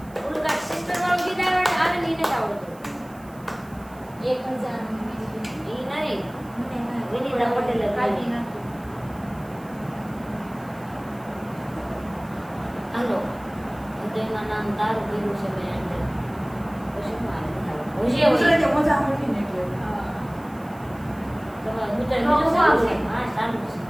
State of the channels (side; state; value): right; noise; hiss, 25 dB below the sound